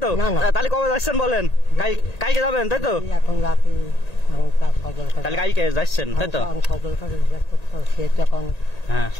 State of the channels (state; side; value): late; right; 1.8 ms